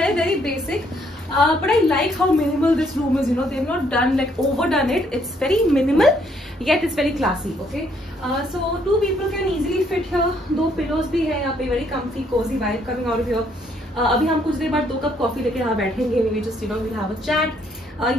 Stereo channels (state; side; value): normal; both; correlation 0.68